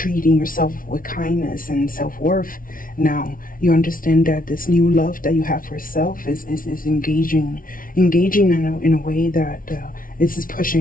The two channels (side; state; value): right; late; 0.40 ms